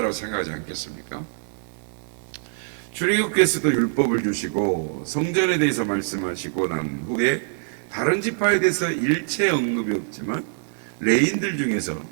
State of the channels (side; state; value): left; silent; 62 dB below the other